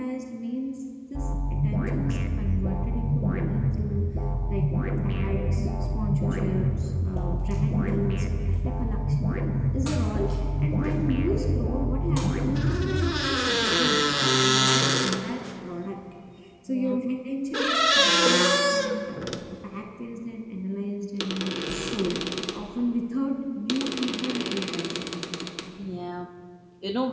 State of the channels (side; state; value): both; identical; correlation 1.00